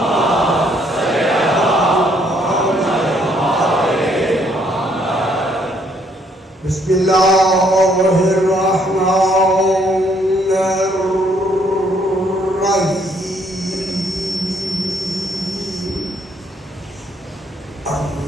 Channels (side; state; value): both; normal; correlation 0.68